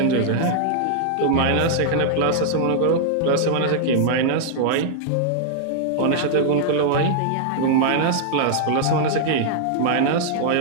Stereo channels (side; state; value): both; different; correlation -0.01